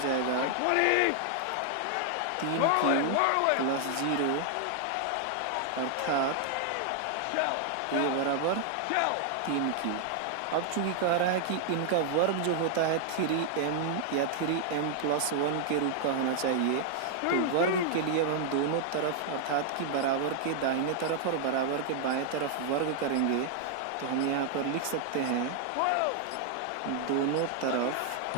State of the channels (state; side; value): different; both; correlation 0.00